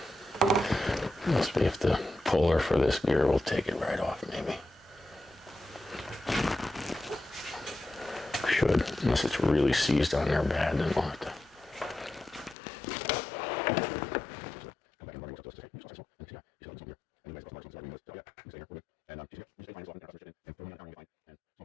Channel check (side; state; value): right; drops out; at 12.6 s